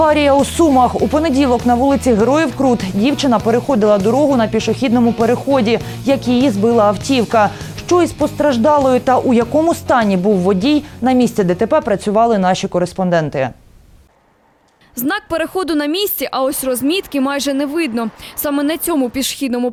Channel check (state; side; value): identical; both; correlation 1.00